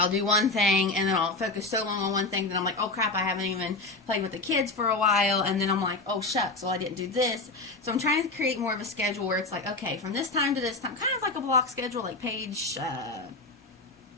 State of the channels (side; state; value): right; quieter; 3.3 dB